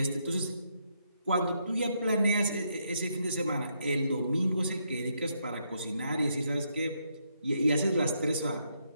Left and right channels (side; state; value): both; inverted; correlation -0.77